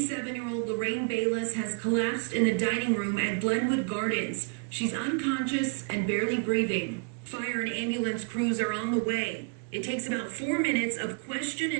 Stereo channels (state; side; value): quieter; left; 38.3 dB